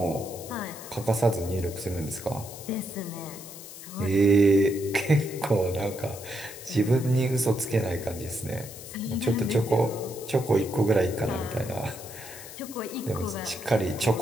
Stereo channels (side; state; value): left; noise; hiss, 14 dB below the sound